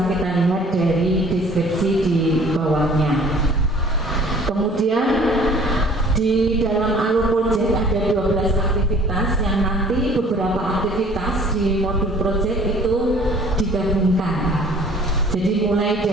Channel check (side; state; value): both; normal; correlation 0.52